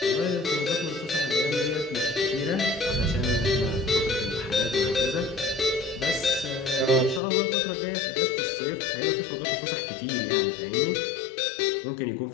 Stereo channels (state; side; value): drops out; right; at 7.2 s